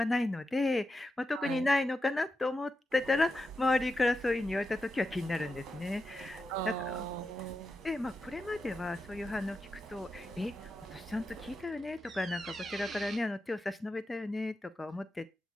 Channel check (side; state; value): both; normal; correlation 0.88